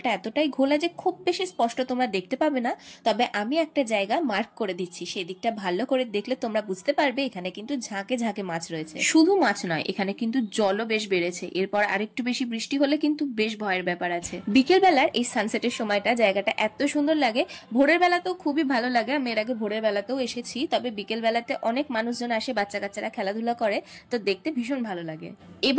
এতটাই ঘোলা যে খুব বেশি স্পষ্ট তোমরা দেখতে পাবে না। তবে আমি একটা জায়গা মার্ক করে দিচ্ছি, সেই দিকটা ভালো করে দেখলে তোমরা বুঝতে পারবে এখানে কিন্তু ঝাঁকে ঝাঁকে মাছ রয়েছে। শুধু মাছ নয়, এখানে কিন্তু জলও বেশ বেড়েছে। এরপর আরেকটু বেশি বৃষ্টি হলে কিন্তু বেশ ভয়ের ব্যাপার আছে। বিকেল বেলার এই সানসেটের সময়টা জায়গাটা এত সুন্দর লাগে। ভোরের বেলাতেও খুবই ভালো লাগে, আমি এর আগে ভোরের বেলাতেও এসেছি। তবে বিকেল বেলাতে অনেক মানুষজন আসে, বাচ্চা কাচ্চারা খেলাধুলা করে, তো দেখতে ভীষণ ভালো লাগে।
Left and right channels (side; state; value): both; identical; correlation 1.00